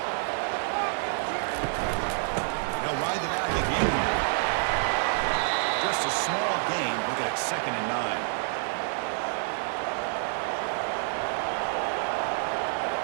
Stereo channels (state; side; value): silent; left; 59 dB below the other